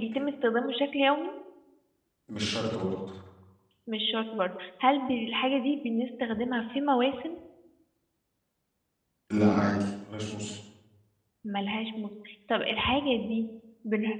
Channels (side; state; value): both; identical; correlation 1.00